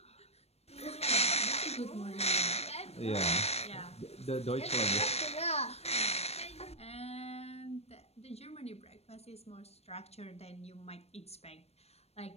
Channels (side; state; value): right; late; 0.30 ms